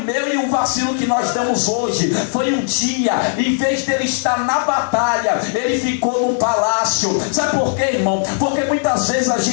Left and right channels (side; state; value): right; silent; 59 dB below the other